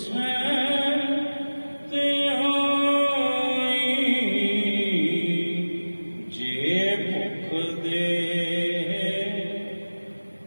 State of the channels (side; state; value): both; inverted; correlation -1.00